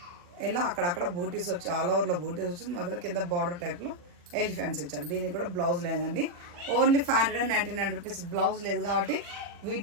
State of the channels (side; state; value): left; late; 40 ms